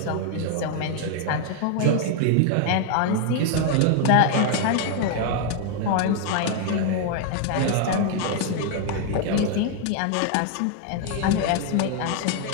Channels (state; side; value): different; both; correlation 0.00